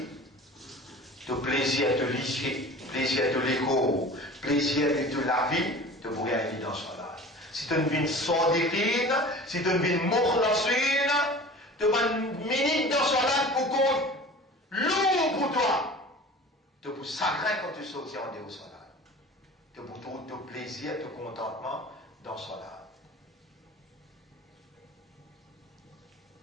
de plaisir de l'issue, plaisir de l'écho, plaisir de la vie, tu pourrais aller dans Salat. Si tu vis sadiqin, si tu vis mukhlasin, tu vas une minute dans Salat pour compte lourd pour toi. Tu pour sacré quand tu sortis en dehors Salat. Tu pour ton plaisir, ton contentement dans Salat.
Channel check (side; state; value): both; normal; correlation 0.40